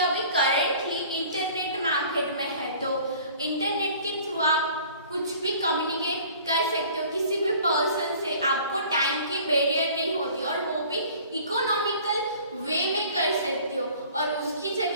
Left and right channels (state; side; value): inverted; both; correlation -0.49